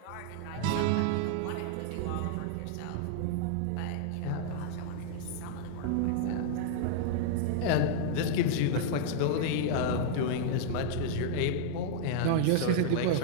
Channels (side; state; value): both; different; correlation -0.01